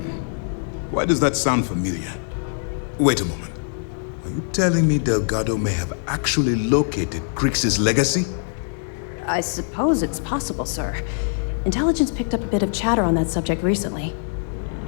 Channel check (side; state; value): right; silent; digital silence